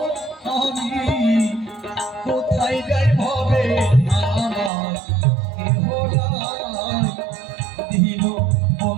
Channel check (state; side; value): drops out; left; at 4.7 s